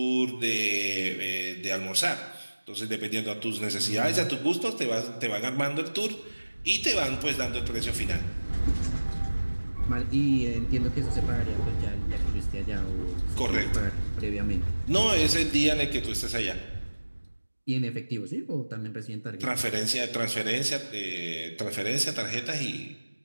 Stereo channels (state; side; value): inverted; both; correlation -1.00